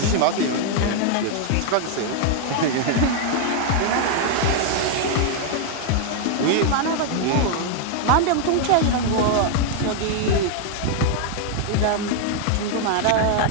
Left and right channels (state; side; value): different; both; correlation 0.00